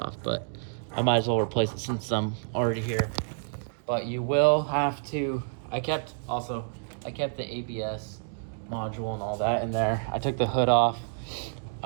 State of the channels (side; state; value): left; silent; digital silence